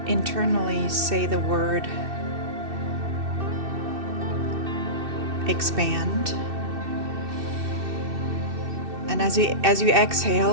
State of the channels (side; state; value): left; late; 2.6 ms